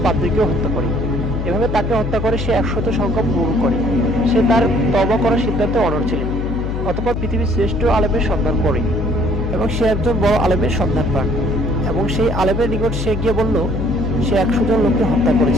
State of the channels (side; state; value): left; noise; hum, 3 dB below the sound